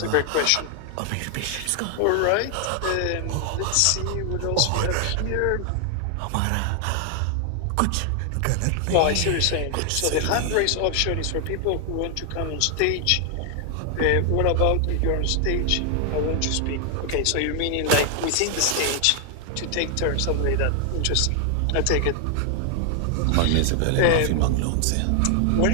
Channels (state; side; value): different; both; correlation 0.00